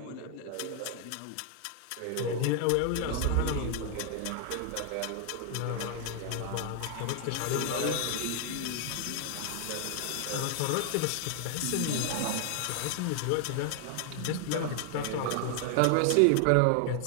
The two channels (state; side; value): different; both; correlation 0.00